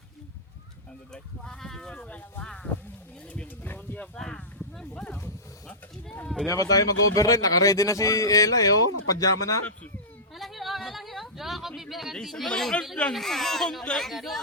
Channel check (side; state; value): both; normal; correlation -0.15